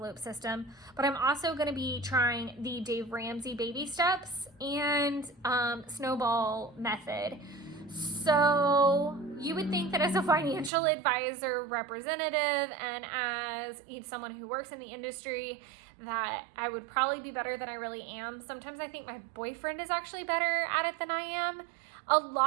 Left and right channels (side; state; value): left; drops out; at 10.7 s